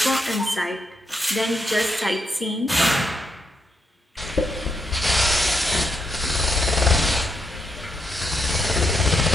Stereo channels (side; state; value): both; normal; correlation 0.79